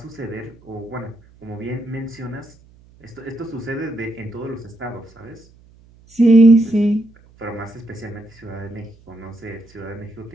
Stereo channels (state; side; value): noise; right; hum, 27 dB below the sound